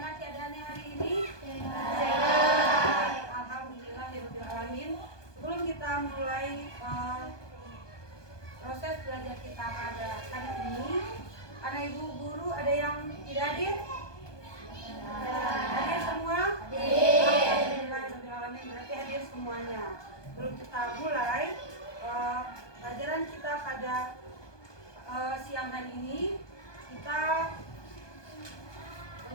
keadaannya hari ini? Baik. Alhamdulillahirabbil alamin. Sebelum kita mulai proses belajar kita pada hari ini, anak ibu guru ada yang tidak hadir? Hadir semua? Alhamdulillahirabbil alamin, berarti hadir semuanya. Sebelum kita mulai pelajaran kita pada siang hari ini, kita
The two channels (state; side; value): late; right; 1.2 ms